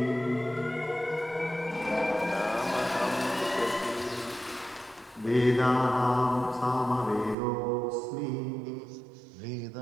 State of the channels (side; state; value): left; drops out; at 7.4 s